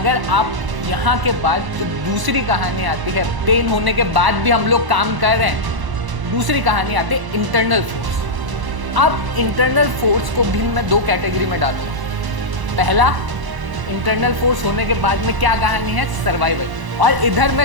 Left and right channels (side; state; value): left; late; 1.0 ms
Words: आप यहां के बाद जो दूसरी कहानी आती है, पेन होने के बाद भी हम लोग काम कर रहे हैं, दूसरी कहानी आती है इंटरनल फोर्स। अब इंटरनल फोर्स को भी मैं 2 कैटेगरी में डालूंगा। पहला, इंटरनल फोर्स होने के बाद में क्या कहानी है? सर्वाइवल। और इधर मैं